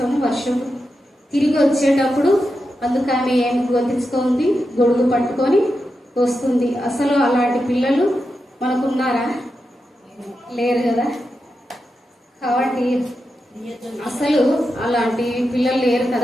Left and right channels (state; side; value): normal; both; correlation 0.88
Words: వర్షం తిరిగి వచ్చేటప్పుడు అందుకు ఆమె ఏమి గొంతించుకుంది, గొడుగు పట్టుకొని వస్తుంది. అసలు అలాంటి పిల్లలు మనకున్నారా? లేరు కదా. కాబట్టి అసలు అలాంటి పిల్లలు లేరు